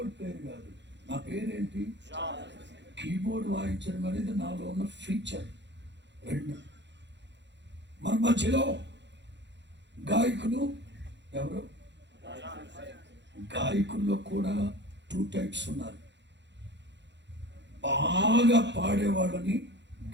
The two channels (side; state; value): left; late; 0.52 ms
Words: ప్లేయర్ కాదు. నా పేరేంటి? కీబోర్డ్ వాయించడం అనేది నాలో ఉన్న ఫీచర్. 2, మన మధ్యలో గాయకులు ఎవరు? గాయకుల్లో కూడా 2 టైప్స్ ఉన్నారు. బాగా పాడేవాళ్ళని